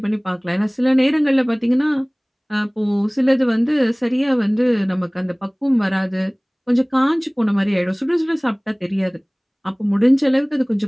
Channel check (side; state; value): both; identical; correlation 1.00